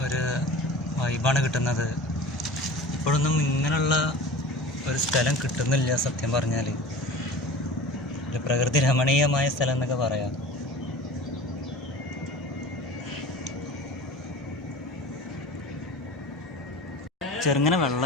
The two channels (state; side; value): normal; both; correlation 0.38